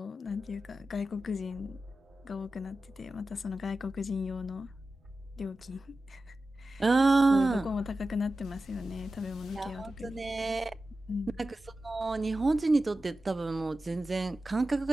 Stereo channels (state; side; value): normal; both; correlation 0.93